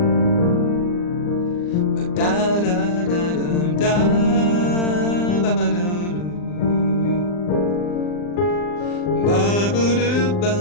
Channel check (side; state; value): right; late; 40 ms